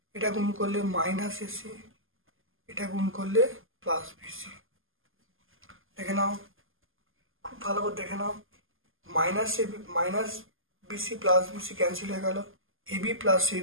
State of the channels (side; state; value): left; late; 0.59 ms